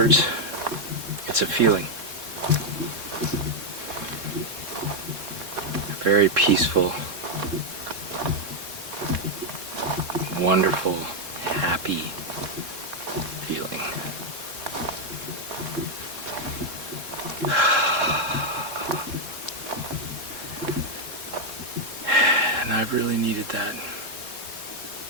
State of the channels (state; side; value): late; left; 3.7 ms